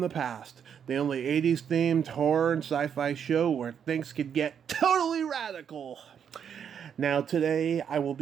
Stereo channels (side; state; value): left; quieter; 8.0 dB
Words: the Past, the only 80s themed horror and sci-fi show where things could get totally radical. Now today I will